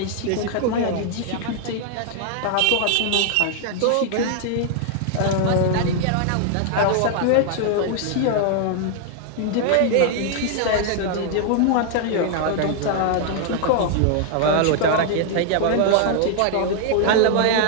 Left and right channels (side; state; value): both; different; correlation 0.00